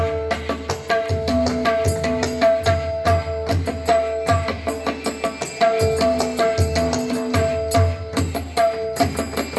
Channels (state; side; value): identical; both; correlation 1.00